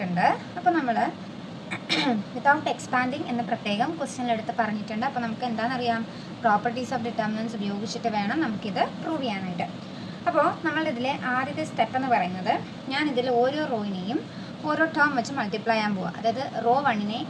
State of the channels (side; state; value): both; identical; correlation 1.00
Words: അപ്പോൾ നമ്മൾ വിതൗട്ട് എക്സ്പാൻഡിങ് എന്ന് പ്രത്യേകം ക്വസ്റ്റ്യനിലെടുത്ത് പറഞ്ഞിട്ടുണ്ട്. അപ്പോൾ നമുക്ക് എന്താണെന്നറിയാം, പ്രോപ്പർട്ടീസ് ഓഫ് ഡിറ്റർമിനൻസ് ഉപയോഗിച്ചിട്ട് വേണം നമുക്കിത് പ്രൂവ് ചെയ്യാനായിട്ട്. അപ്പോൾ നമ്മളിതിലെ ആദ്യത്തെ സ്റ്റെപ്പ് എന്ന് പറയുന്നത്, ഞാനിതിൽ ഓരോ റോയിനെയും ഓരോ ടേം വെച്ച് മൾട്ടിപ്ലൈ ചെയ്യാൻ പോവുക. അതായത് റോ 1-നെ